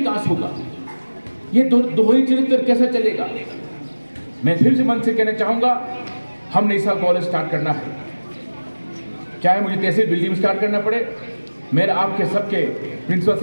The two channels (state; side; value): inverted; both; correlation -1.00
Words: होगा? ये दोहरी चरित्र कैसे चलेगा? मैं फिर से मन से कहना चाहूंगा, हमने इस साल कॉलेज स्टार्ट करना है, चाहे मुझे तहसील बिल्डिंग में स्टार्ट करना पड़े। मेरा आपके सबके प्रिंसिपल